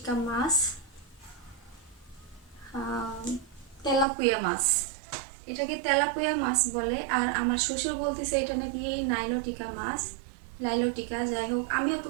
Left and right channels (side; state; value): left; drops out; at 4.0 s